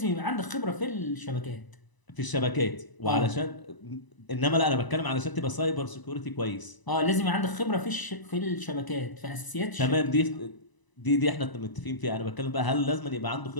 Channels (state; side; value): late; right; 1.0 ms